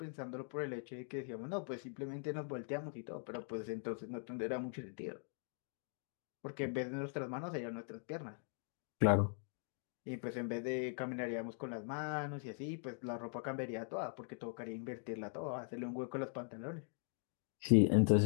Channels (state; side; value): silent; right; 50 dB below the other